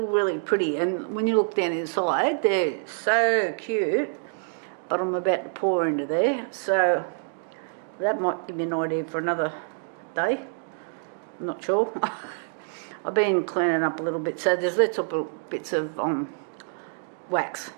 pretty, and when you look down inside, they're so cute. But I'm about to pour into there, so that might give you an idea for another day. I'm not sure. I've been cleaning up a little bit, so there's little bits of wax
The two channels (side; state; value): left; silent; digital silence